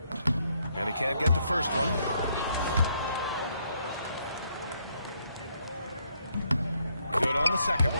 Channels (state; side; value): inverted; both; correlation -0.73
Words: And he can't get the first one. Good on the second